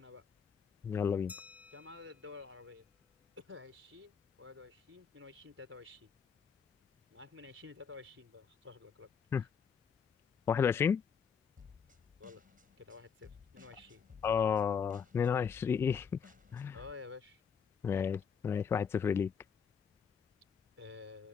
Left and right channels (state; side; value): quieter; right; 6.7 dB